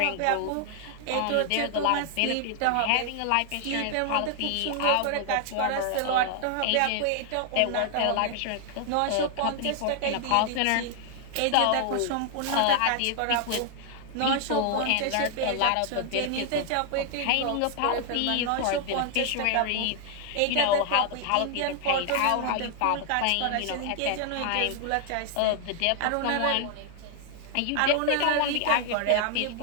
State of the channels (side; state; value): both; different; correlation 0.00